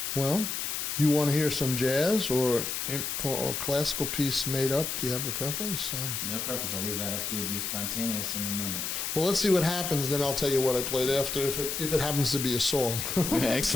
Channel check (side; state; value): left; noise; hiss, 3 dB below the sound